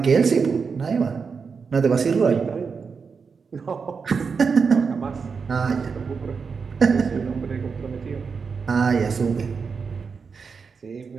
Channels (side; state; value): left; quieter; 5.4 dB